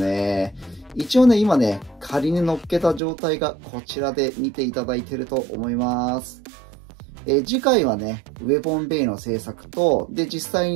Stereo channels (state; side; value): drops out; left; at 3.0 s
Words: 一応ね、今ね、仮に乗っけた状態がこちらで見ていただいていると思います。次回はね、ウェポンベイの製作と、で、実際